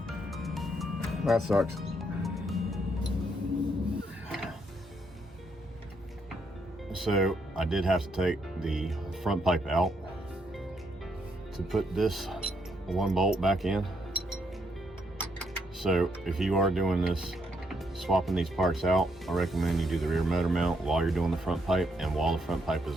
That sucks. So I did have to take the front pipe out to put this one bolt back in. So if you are doing this, swapping these parts out, I recommend you do the rear motor mount while you're doing the front pipe and while the front pipe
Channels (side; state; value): both; normal; correlation 0.75